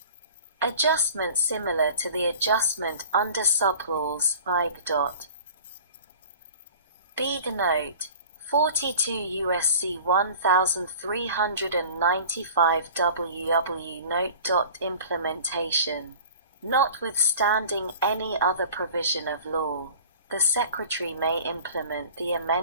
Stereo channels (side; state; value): both; inverted; correlation -0.43